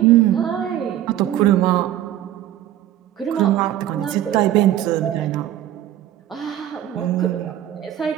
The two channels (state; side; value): quieter; left; 12.3 dB